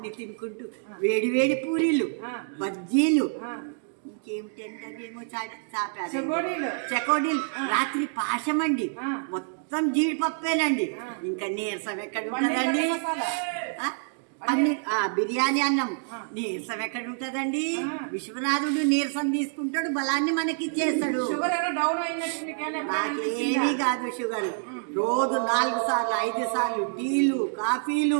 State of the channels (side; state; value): left; silent; digital silence